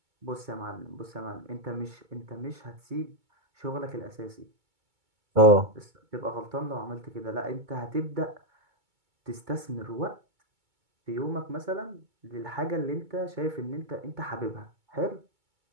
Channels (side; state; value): left; late; 2.2 ms